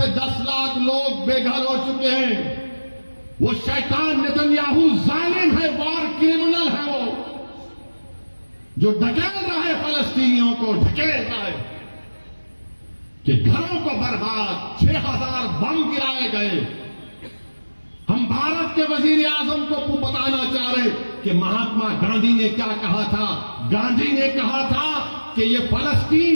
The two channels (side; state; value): both; inverted; correlation -1.00